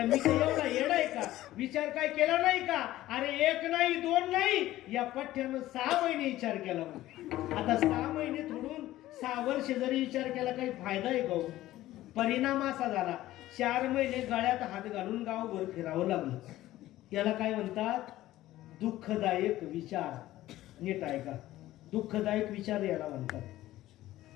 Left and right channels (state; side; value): quieter; right; 15.3 dB